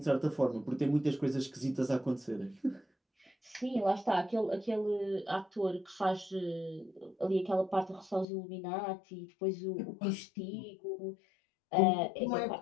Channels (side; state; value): right; drops out; at 8.2 s